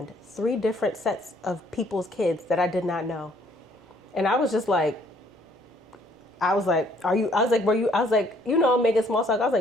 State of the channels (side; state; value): both; normal; correlation 0.63